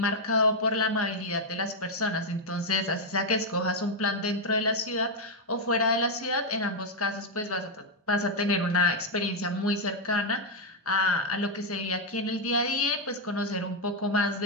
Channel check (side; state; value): both; normal; correlation 0.00